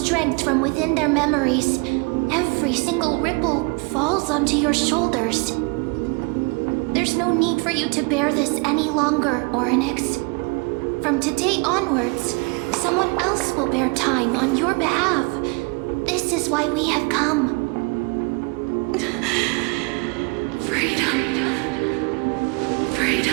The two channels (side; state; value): left; quieter; 30.5 dB